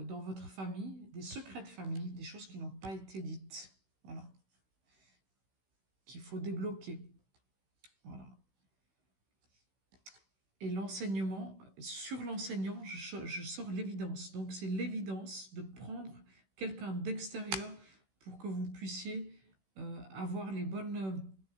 votre famille, des secrets de famille, des choses qui n'ont pas été dites. Voilà. Qu'il faut débloquer. Voilà. Et l'enseignement, sur l'enseignant, je sors l'évidence. Donc, c'est l'évidence de prendre quelqu'un d'extérieur pour que vous puissiez avoir les bonnes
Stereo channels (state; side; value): late; left; 16 ms